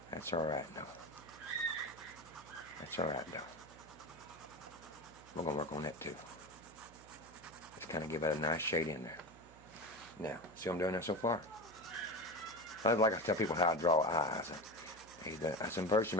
That's alright, though. That's alright, though. We're going to work on that, too. Just kind of give it a nice shade in there. Now, see what I'm doing there so far? I like I tell people how I draw eyes. I said, first you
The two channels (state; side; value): noise; right; hum, 22 dB below the sound